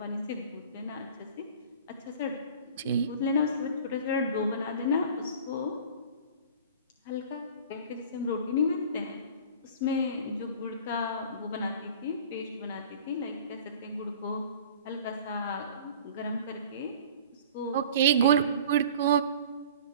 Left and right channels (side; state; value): both; inverted; correlation -0.43